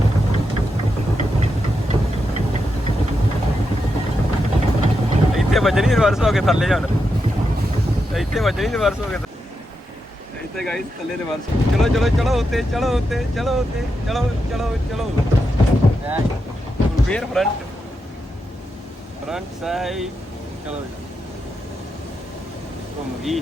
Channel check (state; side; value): normal; both; correlation 0.86